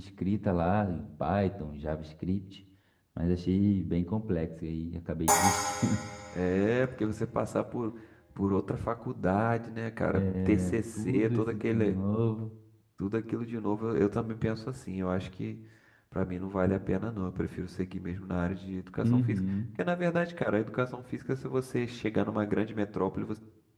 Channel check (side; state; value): both; identical; correlation 1.00